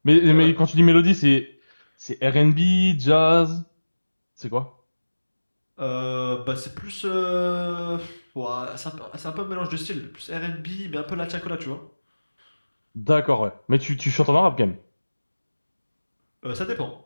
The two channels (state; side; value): inverted; both; correlation -1.00